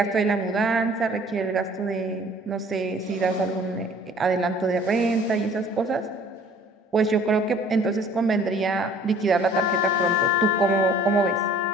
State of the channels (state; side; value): normal; both; correlation 0.53